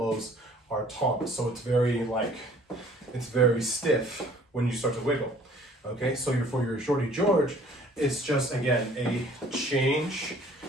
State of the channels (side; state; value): both; normal; correlation 0.54